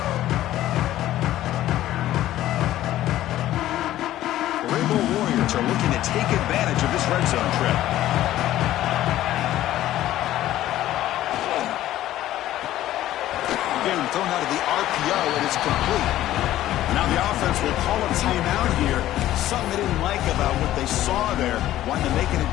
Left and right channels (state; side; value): quieter; right; 13.9 dB